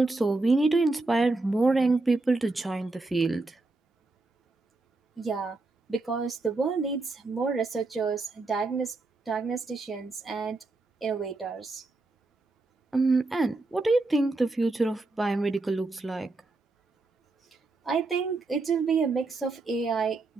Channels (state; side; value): quieter; left; 3.3 dB